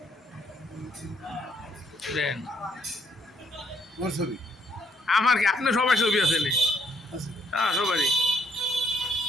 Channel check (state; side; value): normal; both; correlation 0.68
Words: দেন আমার কি আপনার সবাই ছবি আছে? হ্যাঁ সবারই।